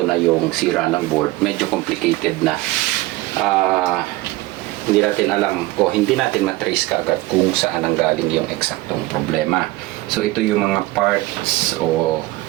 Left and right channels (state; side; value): quieter; left; 19.0 dB